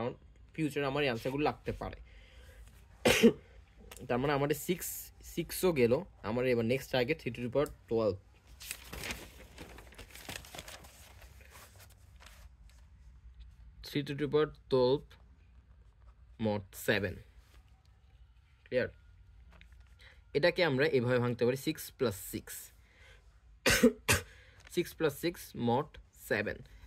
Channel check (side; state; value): both; identical; correlation 1.00